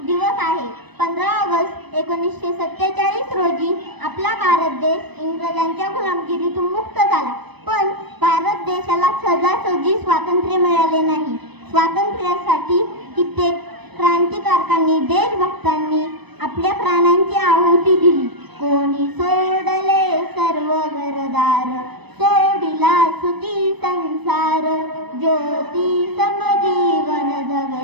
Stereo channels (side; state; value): left; late; 0.99 ms